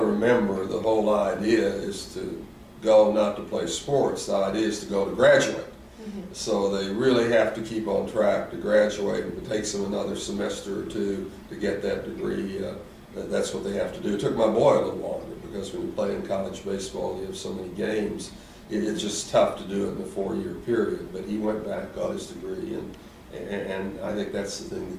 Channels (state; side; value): identical; both; correlation 1.00